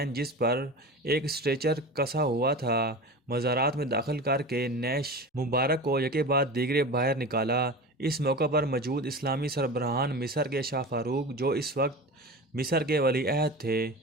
جس پر ایک اسٹریچر کسا ہوا تھا مزارات میں داخل کر کے نیش مبارک کو یکے بعد دیگرے باہر نکالا۔ اس موقع پر موجود اسلامی سربراہان مصر کے شاہ فاروق جو اس وقت مصر کے ولی عہد تھے،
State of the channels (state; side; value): normal; both; correlation 0.31